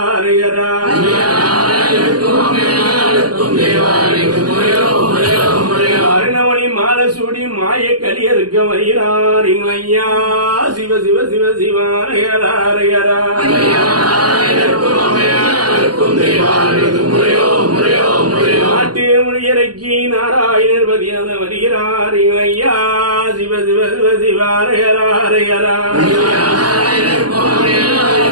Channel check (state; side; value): late; left; 0.69 ms